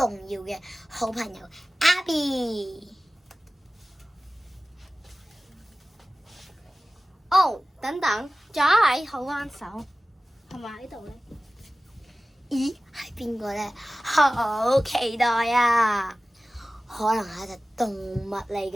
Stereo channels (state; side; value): normal; both; correlation 0.97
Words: 要嘅好朋友 Abby。哦，等等，仲有一位好幫手，係咪喺度咧？咦，係邊個咧？好期待啊！可能係一隻動物嚟